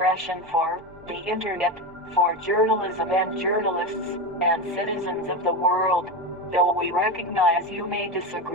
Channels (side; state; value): both; normal; correlation 0.17